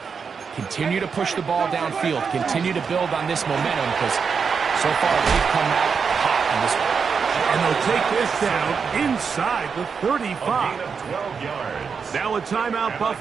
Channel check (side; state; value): left; quieter; 5.9 dB